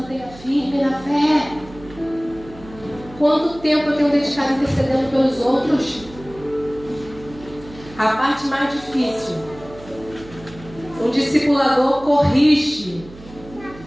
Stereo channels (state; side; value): noise; right; hum, 19 dB below the sound